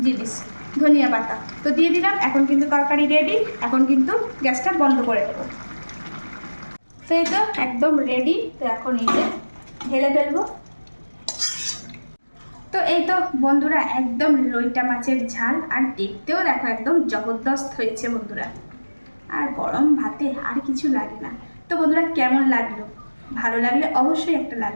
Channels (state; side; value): inverted; both; correlation -1.00